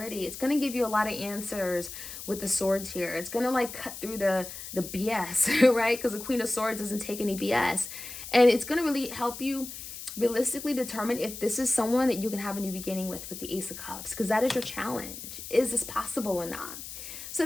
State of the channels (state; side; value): noise; left; hiss, 10 dB below the sound